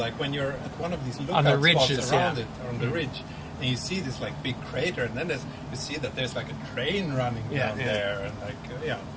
when you're at one of these lookout On the ridges, spots around yeah. it, on the ridge, and you see this like big crater, and then you see that there's like a train running down there, and like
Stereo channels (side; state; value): both; identical; correlation 1.00